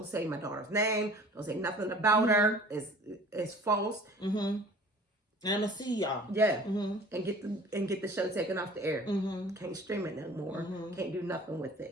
say my daughter's name. Don't say nothing about her. It's false. And I'm gonna see y'all. Yeah, and get the show taken off the air. Can't stream it no more. Can't do nothing with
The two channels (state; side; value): normal; both; correlation 0.47